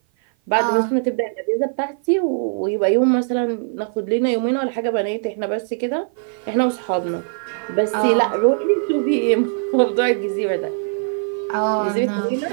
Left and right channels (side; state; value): left; silent; 56 dB below the other